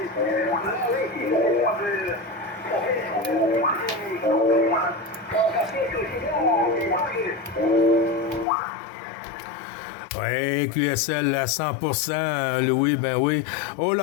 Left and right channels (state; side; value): drops out; right; at 8.5 s